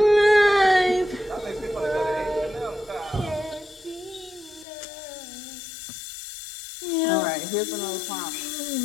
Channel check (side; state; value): right; drops out; at 4.7 s